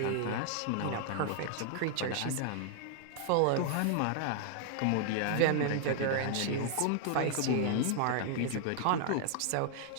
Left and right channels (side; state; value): both; different; correlation 0.00